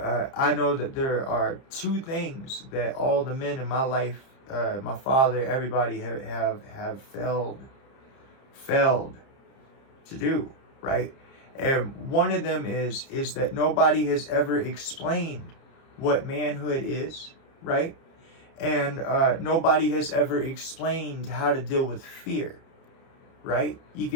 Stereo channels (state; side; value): late; right; 30 ms